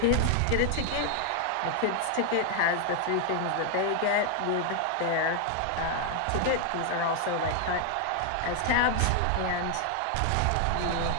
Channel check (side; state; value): both; different; correlation 0.00